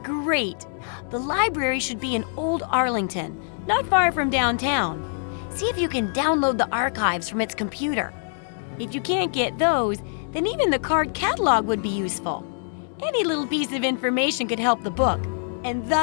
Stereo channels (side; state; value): right; silent; digital silence